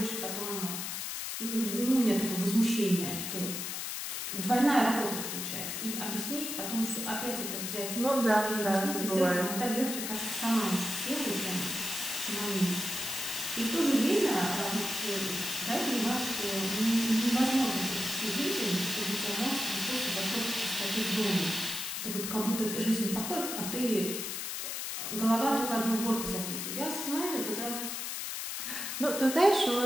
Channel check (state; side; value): noise; left; hiss, 4 dB below the sound